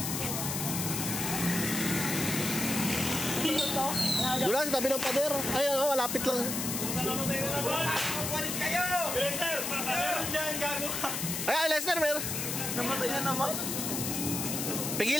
Doon lang sa tabi ng pader. Ay ano, malapit lang. Lester! Meron dyan, gago ka! Ay, Lester, meron. Namatay na naman.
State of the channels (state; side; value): noise; left; hiss, 2 dB below the sound